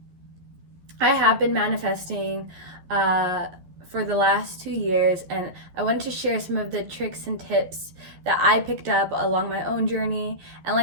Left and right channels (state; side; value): late; left; 12 ms